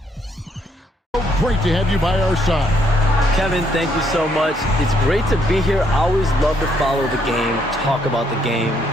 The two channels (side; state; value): both; normal; correlation 0.72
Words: great to have you by our side. Kevin, thank you so much. It's great to be here. I always love to follow the game, talk about the game.